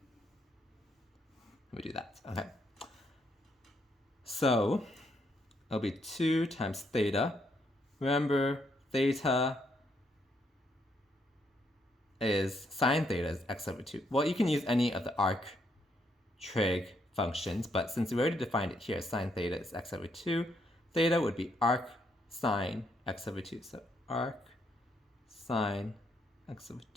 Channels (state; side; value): normal; both; correlation 0.75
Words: Let me do that. Okay. So, it'll be 2 times theta. Remember, theta is, sine theta is x over 2. Well, you can use any of the arc trig functions, but since we already defined it here, sine theta is x over 2, theta would be arc sine x over 2. So arc sine x over